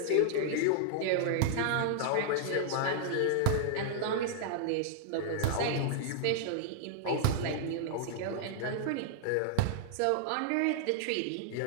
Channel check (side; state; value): both; different; correlation -0.01